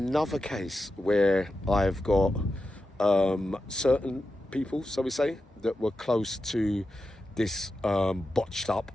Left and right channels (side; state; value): both; normal; correlation 0.89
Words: case where I've got certain people, so we say, that were close to this